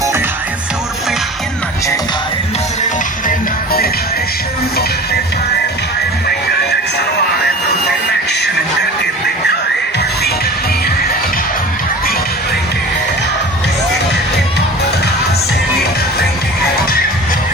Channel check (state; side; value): normal; both; correlation 0.38